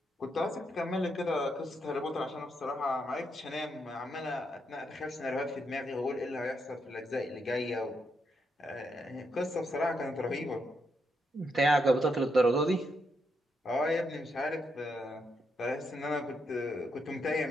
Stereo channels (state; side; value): normal; both; correlation 0.80